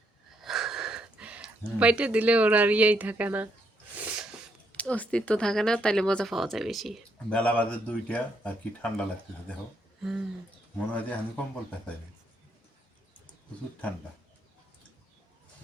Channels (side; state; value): both; normal; correlation 0.75